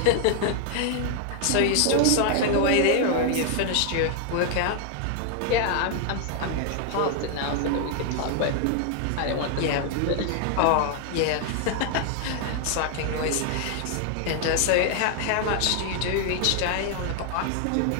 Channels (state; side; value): different; both; correlation 0.00